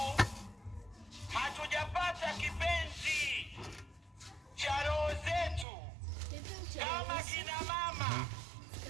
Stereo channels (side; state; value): left; drops out; at 5.7 s